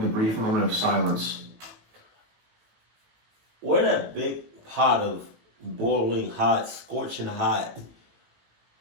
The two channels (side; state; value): left; late; 18 ms